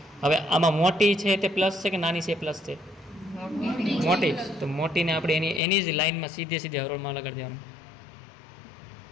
હવે આમાં મોટી છે તે પ્લસ છે કે નાની છે પ્લસ છે? મોટી. તો મોટીને આપણે એની જ લાઇનમાં સીધે હરોળમાં લગાડી દેવાનું.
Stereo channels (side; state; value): right; drops out; at 5.6 s